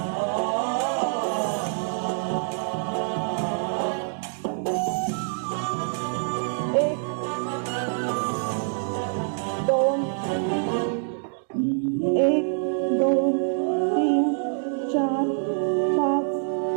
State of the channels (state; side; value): silent; left; digital silence